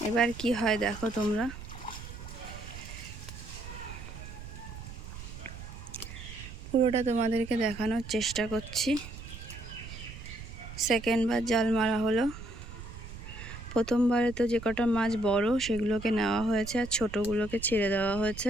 এবার কি হয় দেখো তোমরা। পুরোটা তোমাদেরকে দেখানোর চেষ্টা করছি। সেকেন্ডবার জাল মারা হলো। প্রথমবারে তো যে কটা মাছ বড় সেগুলোকে নেওয়া হয়েছে আর ছোটোগুলোকে ছেড়ে দেওয়া হয়েছে।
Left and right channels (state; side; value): noise; right; rumble, 12 dB below the sound